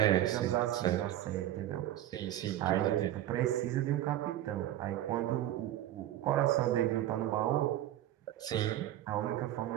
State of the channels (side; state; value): left; quieter; 12.9 dB